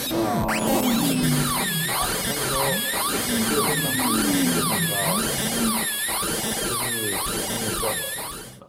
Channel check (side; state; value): both; identical; correlation 1.00